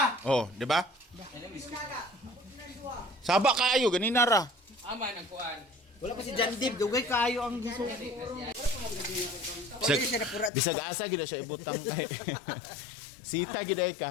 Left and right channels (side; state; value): right; drops out; at 10.5 s